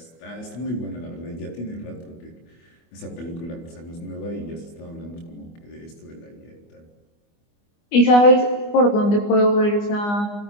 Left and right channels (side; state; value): right; late; 24 ms